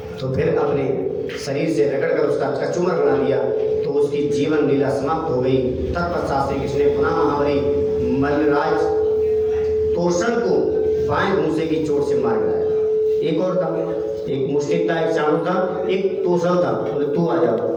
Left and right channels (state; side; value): identical; both; correlation 1.00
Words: तो फिर अपने शरीर से रगड़कर उसका कचूमर बना दिया, तो उसकी जीवन लीला समाप्त हो गई। तत्पश्चात श्री कृष्ण ने पुनः महाबली मल्लराज तोषण को बाएं घूंसे की चोट से मार गिराया। एक और था, एक मुष्टिक था, एक चाणूक था, एक तोषण था, बोले तू आ जाओ,